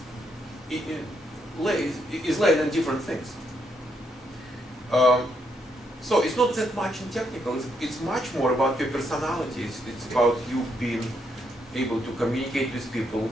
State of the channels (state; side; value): normal; both; correlation 0.77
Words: laid in different things. So it's not that much in technical. It's much more about your personality. It's about you being able to communicate with people,